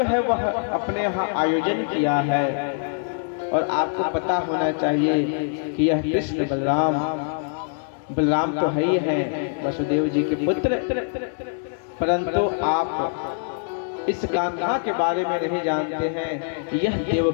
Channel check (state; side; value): silent; right; digital silence